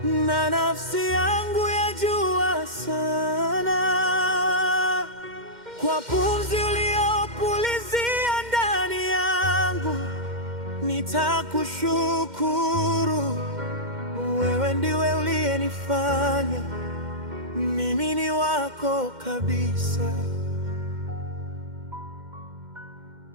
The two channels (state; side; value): late; left; 2.1 ms